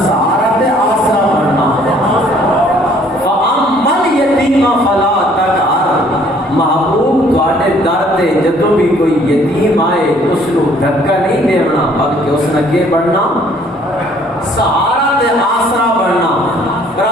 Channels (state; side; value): normal; both; correlation 0.59